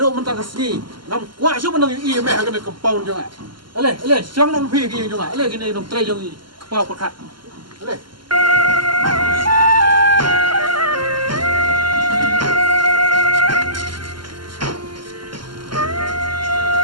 mentang sini. Nam kuat su bandang i me hagan compound jonga. Ale, siang nam phi ki jonga. Ale kini nam trai jong i kepau perkat. Ale.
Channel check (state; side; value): late; left; 0.72 ms